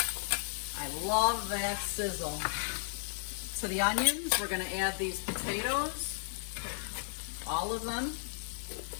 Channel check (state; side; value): silent; right; digital silence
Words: I love that sizzle. To the onions, we're gonna add these potatoes, all of them.